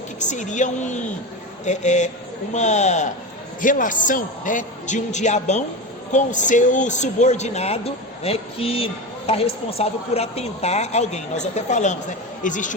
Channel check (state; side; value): normal; both; correlation 0.22